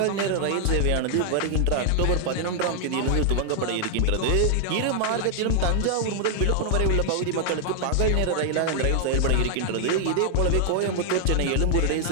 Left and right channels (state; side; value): different; both; correlation 0.00